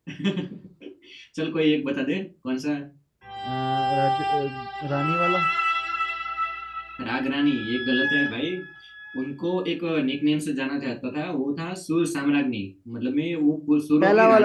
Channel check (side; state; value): both; identical; correlation 1.00